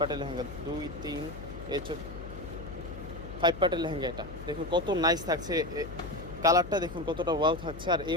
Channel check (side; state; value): left; noise; hum, 12 dB below the sound